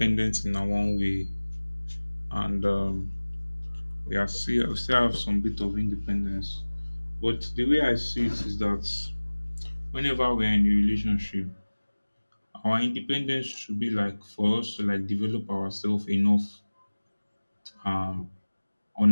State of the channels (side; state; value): both; inverted; correlation -1.00